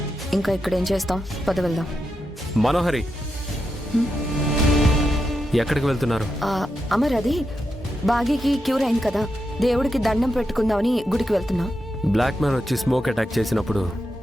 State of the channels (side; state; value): both; normal; correlation 0.86